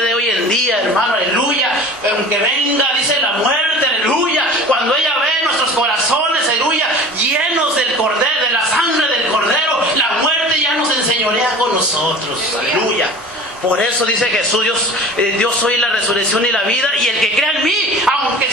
hoy en día, hermano, aleluya. Aunque venga, dice, la muerte, aleluya, cuando ella ve nuestros corazones, aleluya, llenos del cordero, de la sangre del cordero, la muerte ya nos enseñorea con nosotros, aleluya. Por eso dice Jesús, Dios soy la resurrección y la vida, y el que crea en mí, aunque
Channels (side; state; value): both; normal; correlation 0.39